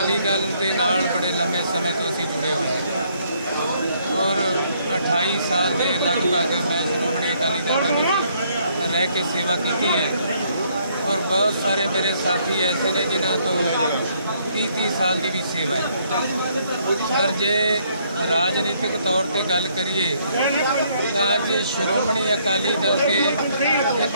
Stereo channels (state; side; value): inverted; both; correlation -0.68